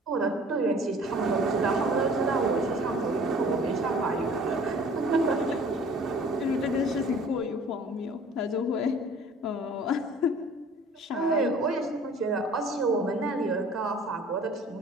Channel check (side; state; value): both; normal; correlation 0.49